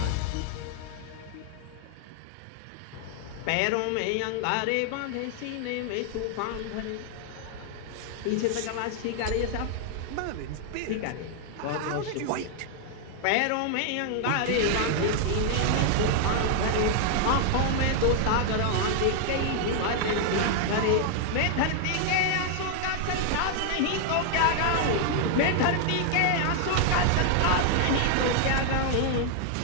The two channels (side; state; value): both; different; correlation 0.00